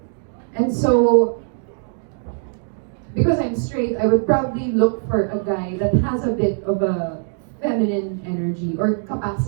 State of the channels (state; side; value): silent; left; digital silence